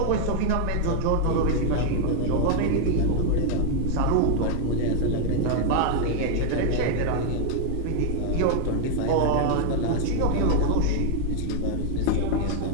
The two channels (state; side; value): different; both; correlation 0.00